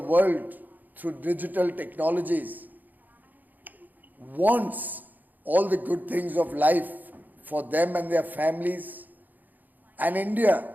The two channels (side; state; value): left; late; 0.084 ms